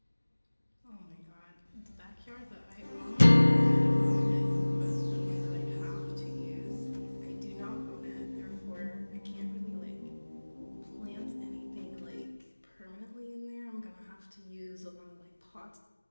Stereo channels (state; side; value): inverted; both; correlation -1.00